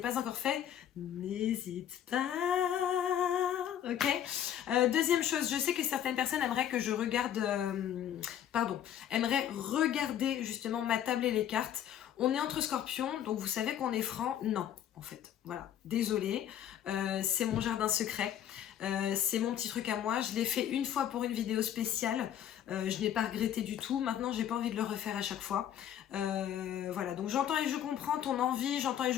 pas encore fait, n'hésite pas. Ok. Deuxième chose, je sais que certaines personnes aimeraient que je regarde, aimeraient regarder justement ma table et les cartes. On est entre scorpions, donc vous savez qu'on est franc. Non, en fait, voilà, désolée, c'est mon jardin secret, c'est mon petit truc à moi. Je l'ai fait une fois pour une vidéo spéciale, je n'ai pas regretté du tout. Maintenant, j'ai pas envie de le refaire à chaque fois. Voilà, donc j'entends et je comprends ton envie, j'entends et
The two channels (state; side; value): quieter; right; 10.3 dB